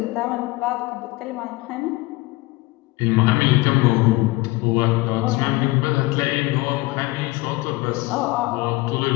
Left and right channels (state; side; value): quieter; right; 20.9 dB